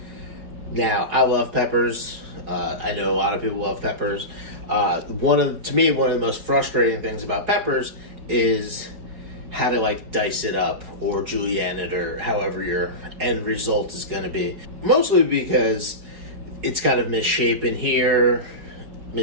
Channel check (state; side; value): late; left; 4.7 ms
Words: Now I love peppers, I know a lot of people love peppers. To me, one of the most frustrating things about peppers is how to like dice it up or julienne it or however your end result is gonna be. Mostly because it's kind of misshapen here,